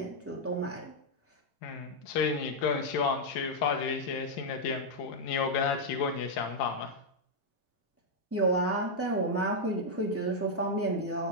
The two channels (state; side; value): normal; both; correlation -0.03